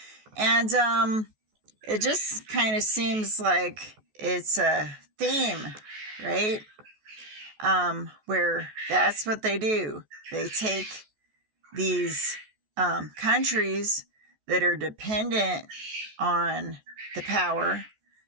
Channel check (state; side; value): late; left; 14 ms